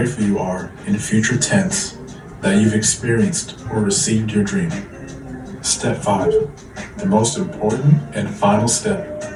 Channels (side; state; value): both; identical; correlation 1.00